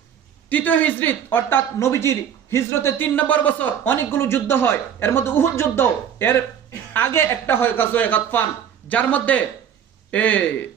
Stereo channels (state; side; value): quieter; left; 8.8 dB